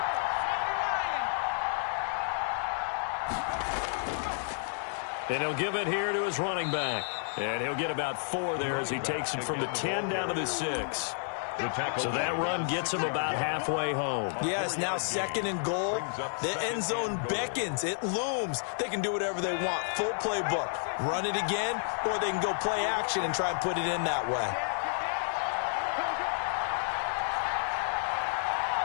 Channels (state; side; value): silent; right; digital silence